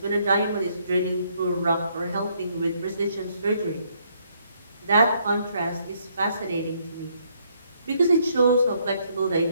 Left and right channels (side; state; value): both; inverted; correlation -0.70